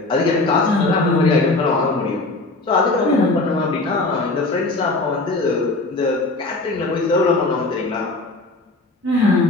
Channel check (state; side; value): quieter; right; 3.1 dB